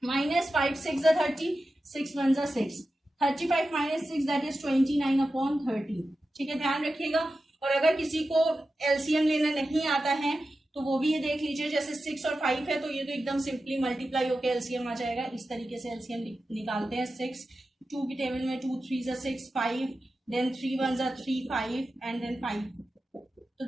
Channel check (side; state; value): both; normal; correlation 0.92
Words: माइनस 5 6 जा 30, 6 1 जा 6, 35 माइनस 6 दैट इज 29/30। ठीक है, ध्यान रखिएगा। और अगर किसी को एलसीएम लेना नहीं आता है तो वो भी ये देख लीजिए, जैसे 6 और 5 है तो ये तो एकदम सिंपली मल्टीप्लाई होकर एलसीएम आ जाएगा, इस तरीके से एलसीएम निकालते हैं। 6 2 की टेबल में 2 3 जा 6 5, देन 3 1 जा 3 5 एंड देन 5, तो